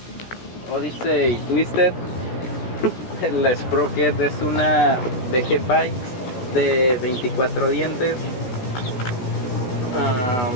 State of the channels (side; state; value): right; late; 16 ms